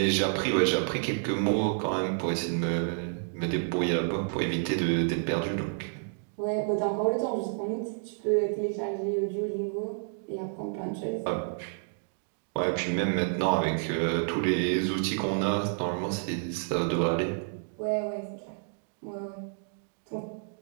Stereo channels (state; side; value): silent; left; digital silence